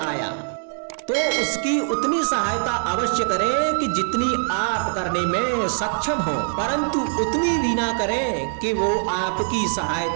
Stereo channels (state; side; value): silent; left; digital silence